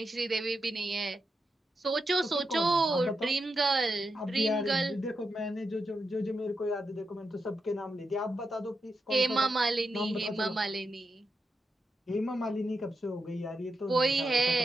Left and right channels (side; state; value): both; normal; correlation 0.85